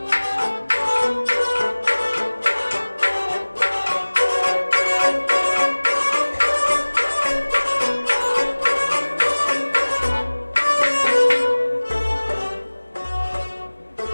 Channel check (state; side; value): inverted; both; correlation -1.00